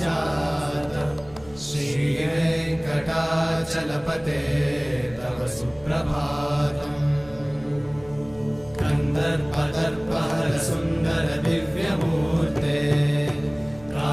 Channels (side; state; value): right; noise; hum, 23 dB below the sound